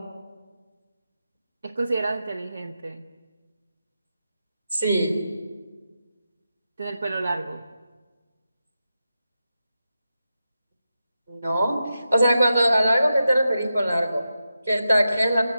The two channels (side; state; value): both; inverted; correlation -0.89